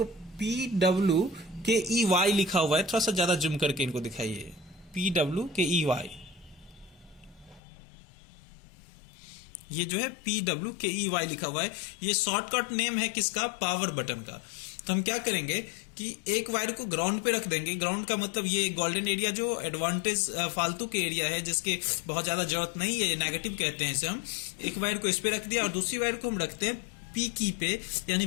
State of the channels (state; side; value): drops out; right; at 7.6 s